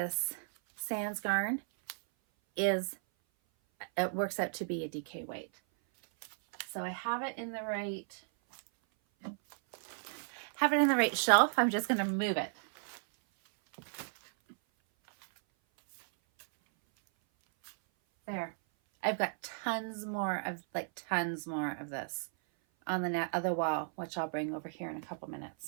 Sans Garn it works out to be a DK weight. So I have it in the right shelf. I'm just going to move it. There. I've got tons more of this on the other wall, which I'll bring over here in a couple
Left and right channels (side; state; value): left; silent; 55 dB below the other